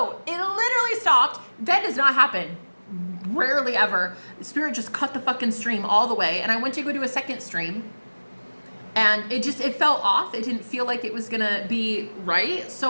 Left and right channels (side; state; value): both; inverted; correlation -1.00